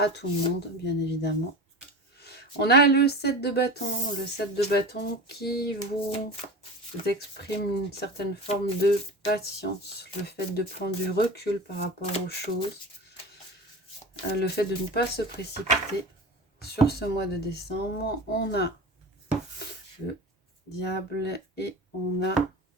tout le monde, bien évidemment. On a le 7 de bâton. Le 7 de bâton qui vous exprime une certaine forme de patience. Le fait de prendre du recul par rapport aux choses. Le fait de ne pas se précipiter. Sur ce mois de décembre, on a le diable et on a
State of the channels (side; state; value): both; normal; correlation 0.31